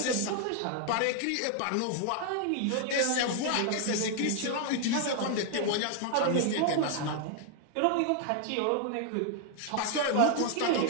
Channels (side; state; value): both; different; correlation 0.00